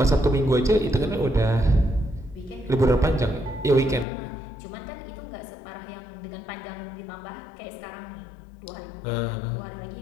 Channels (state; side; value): drops out; right; at 4.0 s